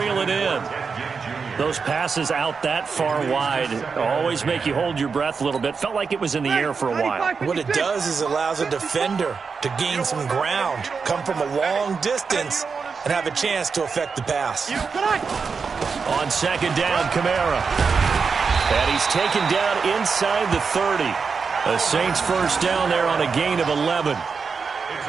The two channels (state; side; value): quieter; left; 5.3 dB